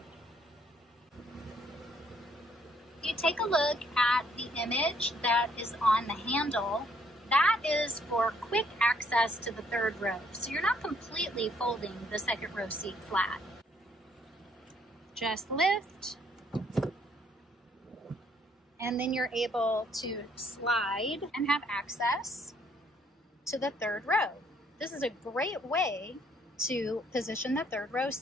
If you take a look at the image that is on the handle, that is for quick access to the third row. So you're not completely folding the second row seat flat. Just lift, and then you're able to slide and have access to the third row. This is a great way to position the third row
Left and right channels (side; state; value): both; normal; correlation 0.67